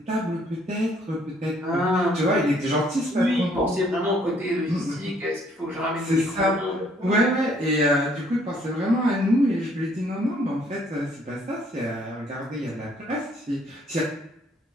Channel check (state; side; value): normal; both; correlation 0.64